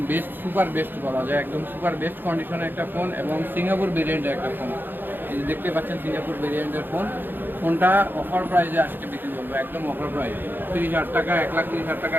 বেস্ট, সুপার বেস্ট বলা যায়। একদম সুপার বেস্ট কন্ডিশনের একটা ফোন এবং সিঙ্গাপুর ভেরিয়েন্টের একটা ফোন। এই যে দেখতে পাচ্ছেন সিঙ্গাপুর ভেরিয়েন্টের ফোনটা অফার প্রাইসে আজকে বিক্রি করবো, একদম অফার প্রাইস 30,000 টাকা, 1,30,000 টাকা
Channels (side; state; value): left; late; 0.095 ms